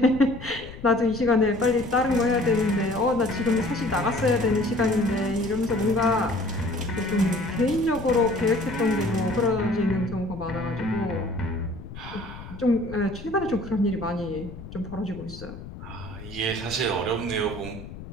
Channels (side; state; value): left; noise; rumble, 13 dB below the sound